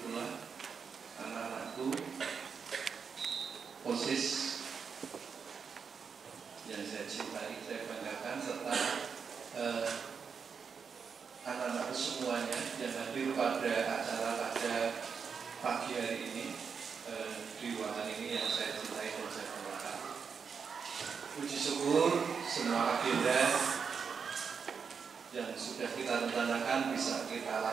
pula anak-anakku, OSIS yang saya cintai, saya banggakan, serta anak-anakku semuanya yang hadir pada acara pada pagi hari ini di ruangan ini yang saya cintai dan saya banggakan. Puji syukur semua agenda yang sudah kita rencanakan bisa kita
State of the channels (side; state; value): left; quieter; 6.1 dB